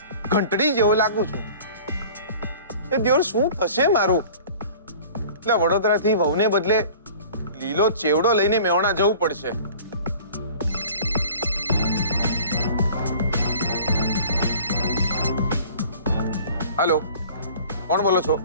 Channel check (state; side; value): inverted; both; correlation -0.45